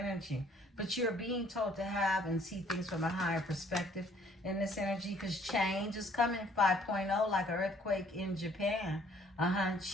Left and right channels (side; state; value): both; normal; correlation 0.60